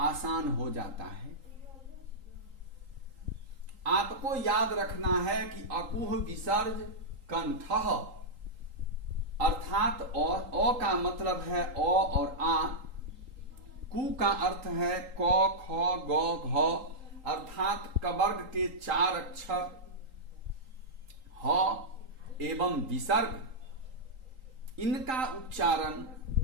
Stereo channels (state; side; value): late; left; 3.8 ms